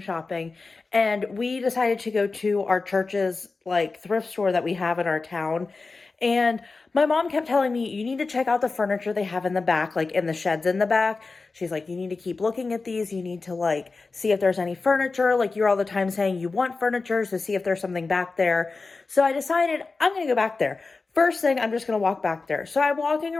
and we decided to go to our church's like thrift store that we have in our town. And my mom kept telling me, you need to check out the furniture they have in the back, like in the sheds in the back. She's like, you need to keep looking at these. You need to like see if there's any furniture. Like you're all the time saying you want furniture, so see if there's something back there. So I decided I'm going to go back there. First thing, I'm just going to walk back there. So I'm walking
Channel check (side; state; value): right; quieter; 4.0 dB